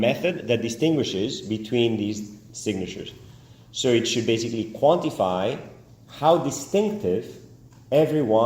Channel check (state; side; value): identical; both; correlation 1.00